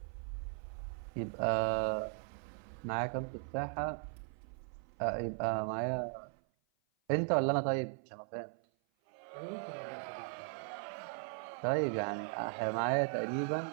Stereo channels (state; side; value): silent; left; 52 dB below the other